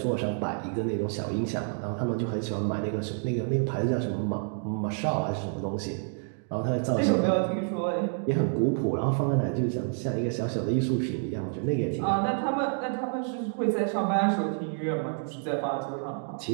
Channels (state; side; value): silent; left; 57 dB below the other